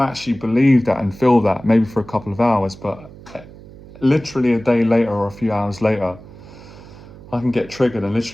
actually believe that and feel that maybe for a couple of hours, but literally a day later or a few hours later, I can get triggered and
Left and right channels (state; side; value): noise; right; hum, 19 dB below the sound